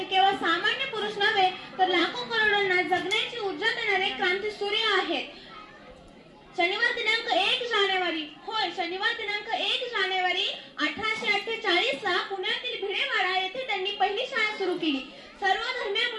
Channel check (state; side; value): identical; both; correlation 1.00